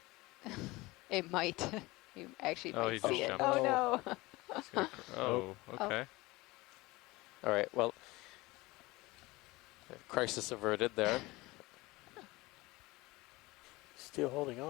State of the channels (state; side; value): quieter; right; 21.4 dB